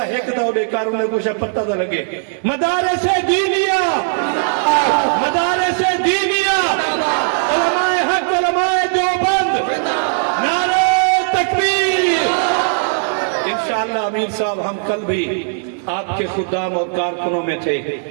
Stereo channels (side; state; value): left; silent; digital silence